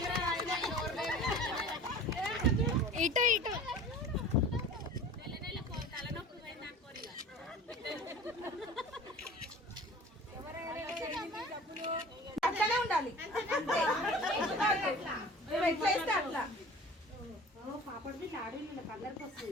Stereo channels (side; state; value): both; normal; correlation 0.42